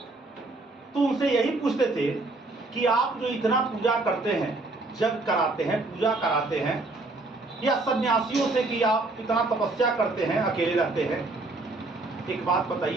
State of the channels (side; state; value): left; quieter; 3.1 dB